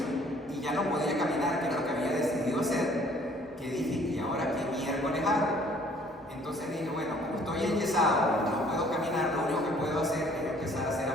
y ya no podía caminar, que era lo que había decidido hacer, que dije, ¿y ahora qué miércoles hago? Entonces dije, bueno, como estoy enyesado, no puedo caminar, lo único que puedo hacer es empezar a hacer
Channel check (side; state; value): both; normal; correlation 0.58